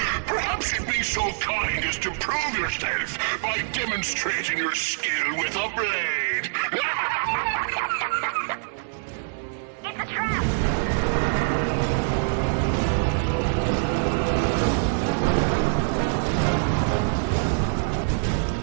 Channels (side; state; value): left; silent; 55 dB below the other